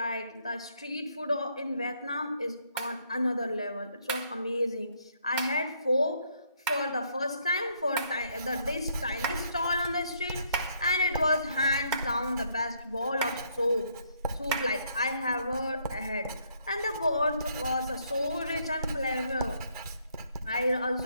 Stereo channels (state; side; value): inverted; both; correlation -0.70